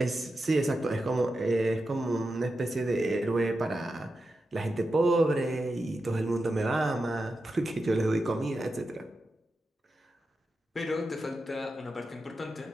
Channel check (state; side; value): normal; both; correlation 0.90